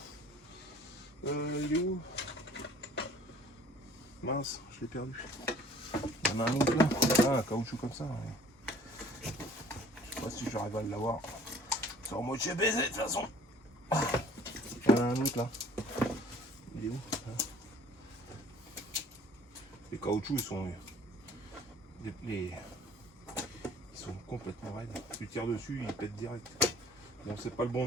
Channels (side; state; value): both; normal; correlation 0.52